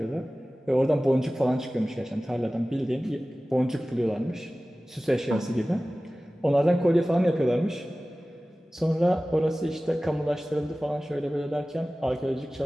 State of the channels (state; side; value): normal; both; correlation 0.97